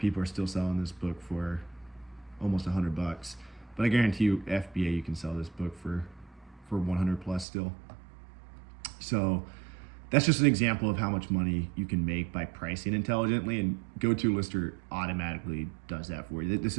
are still selling this book for almost $100. But I guarantee you FBA, you can sell this book for 100 plus still. So that's just an example of how much money you can make by pricing intelligently, and GoTo Lister automatically does that for you. This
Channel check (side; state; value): left; drops out; at 7.5 s